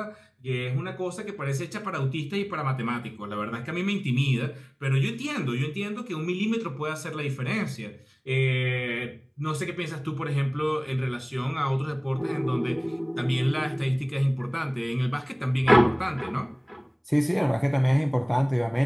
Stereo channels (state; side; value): identical; both; correlation 1.00